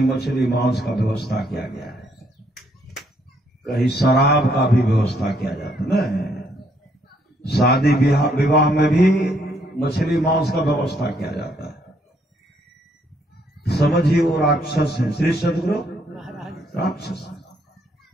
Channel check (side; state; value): both; normal; correlation 0.70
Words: मछली मांस का व्यवस्था किया गया है, कहीं शराब का भी व्यवस्था किया जाता है ना। शादी विवाह में भी मछली मांस का व्यवस्था किया जाता है। समझिए वो राक्षस है। श्री सदगुरु राक्षस।